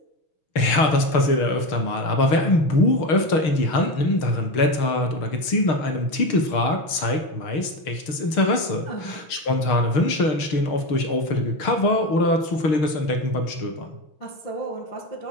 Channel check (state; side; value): late; right; 6.5 ms